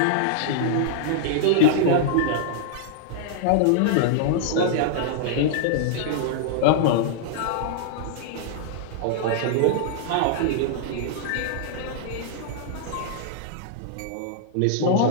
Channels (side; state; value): both; different; correlation -0.01